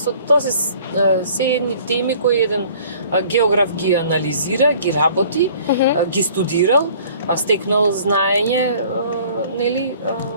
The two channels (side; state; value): both; inverted; correlation -0.52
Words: тоа се едни теми кои еден географ ги анализира, ги работи, ги студирал, стекнал знаење, нели,